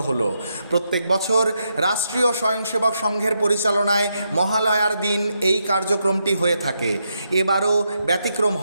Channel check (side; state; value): both; inverted; correlation -0.82